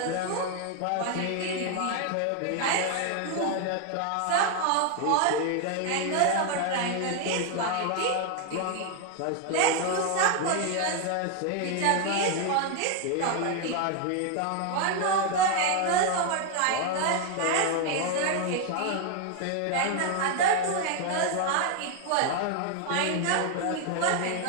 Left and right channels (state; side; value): different; both; correlation 0.00